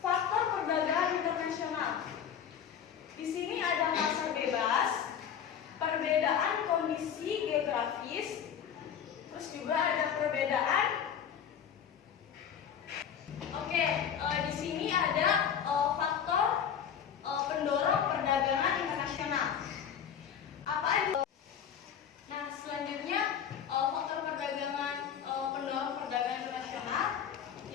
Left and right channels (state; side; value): quieter; right; 8.4 dB